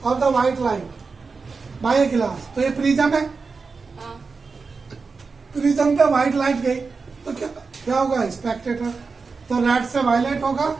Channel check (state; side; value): quieter; left; 4.6 dB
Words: of the white light by a glass, तो ये प्रिज्म है, हाँ, प्रिज्म पे व्हाइट लाइट गई तो क्या होगा, स्पेक्टेटर। तो रेड से वायलेट होगा,